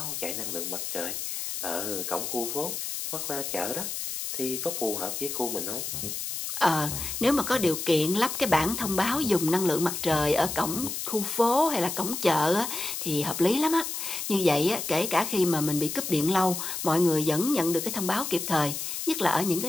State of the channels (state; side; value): noise; left; hiss, 4 dB below the sound